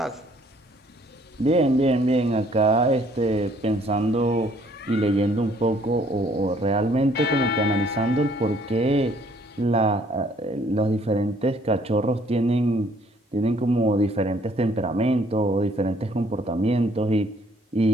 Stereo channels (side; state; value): both; normal; correlation 0.62